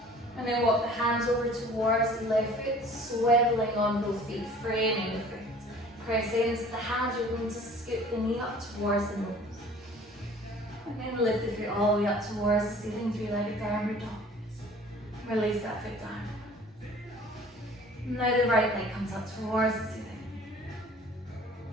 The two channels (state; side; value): normal; both; correlation 0.49